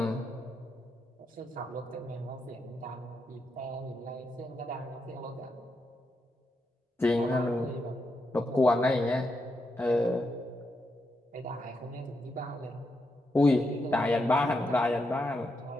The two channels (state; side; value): normal; both; correlation 0.83